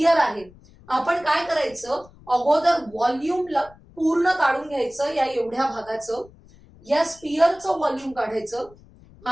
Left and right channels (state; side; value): noise; left; rumble, 25 dB below the sound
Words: आहे. आपण काय करायचं, अगोदर व्हॉल्यूम पूर्ण काढून घ्यायचं या एवढ्या भागाचं. या स्पियरचं व्हॉल्यूम काढायचं